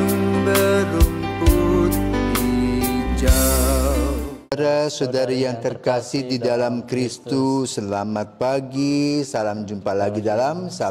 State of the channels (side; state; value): both; identical; correlation 1.00